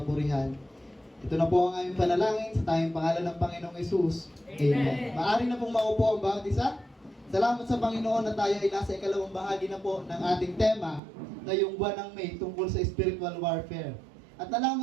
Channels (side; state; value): left; drops out; at 11.0 s